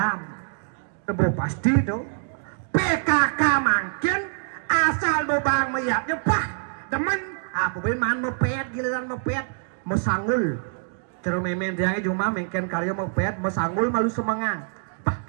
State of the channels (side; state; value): left; silent; digital silence